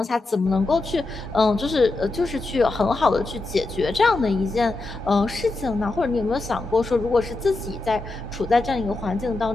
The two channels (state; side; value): quieter; right; 3.2 dB